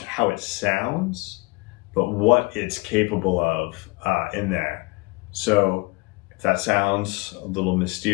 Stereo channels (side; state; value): right; quieter; 25.7 dB